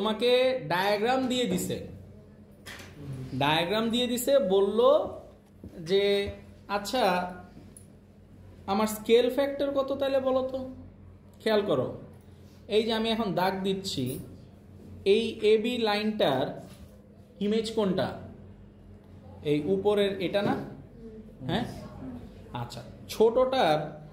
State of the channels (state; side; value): identical; both; correlation 1.00